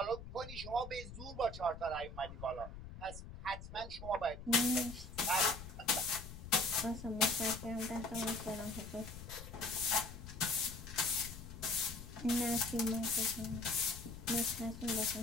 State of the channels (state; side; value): noise; left; rumble, 12 dB below the sound